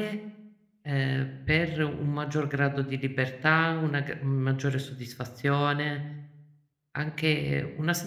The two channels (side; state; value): both; identical; correlation 1.00